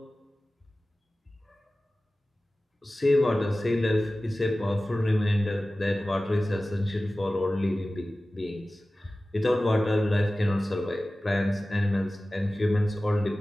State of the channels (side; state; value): both; normal; correlation 0.96